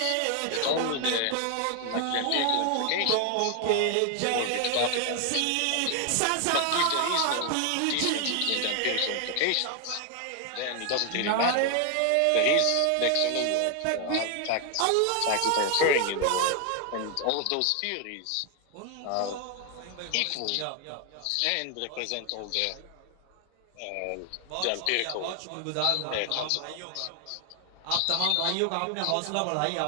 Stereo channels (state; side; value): different; both; correlation 0.00